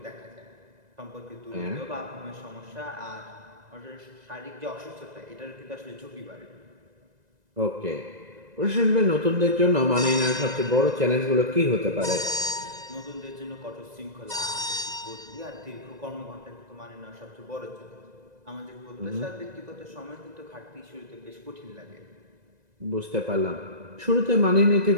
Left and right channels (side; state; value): left; late; 2.0 ms